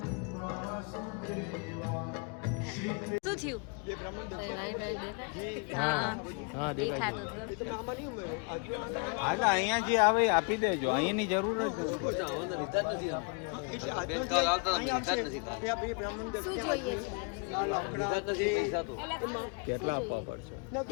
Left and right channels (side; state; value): right; quieter; 34.9 dB